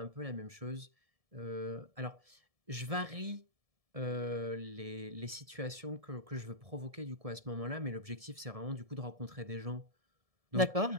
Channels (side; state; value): left; late; 1.7 ms